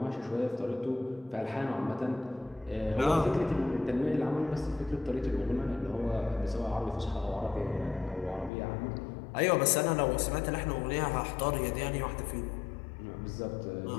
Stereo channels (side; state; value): right; drops out; at 8.5 s